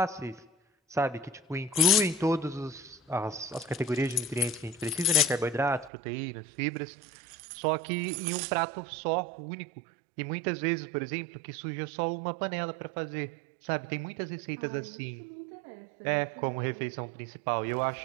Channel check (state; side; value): drops out; left; at 5.9 s